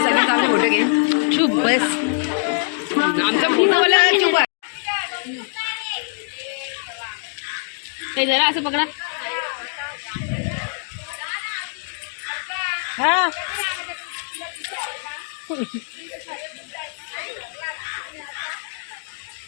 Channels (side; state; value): right; silent; 59 dB below the other